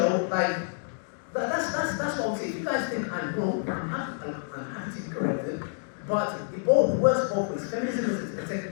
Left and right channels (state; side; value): silent; right; digital silence